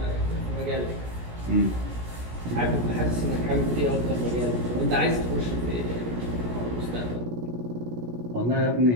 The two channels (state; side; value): late; left; 17 ms